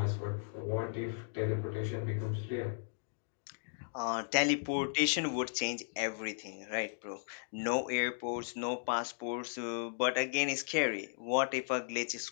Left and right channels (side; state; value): right; silent; digital silence